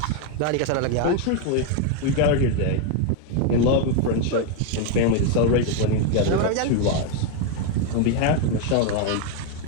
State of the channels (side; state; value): both; different; correlation 0.01